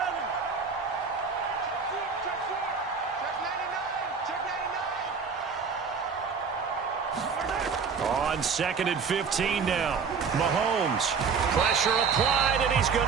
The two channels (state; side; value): quieter; left; 5.7 dB